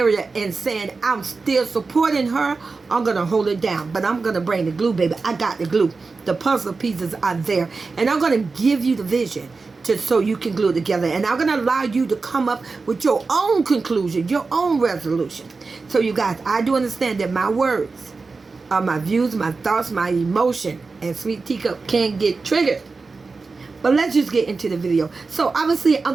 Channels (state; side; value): quieter; left; 4.2 dB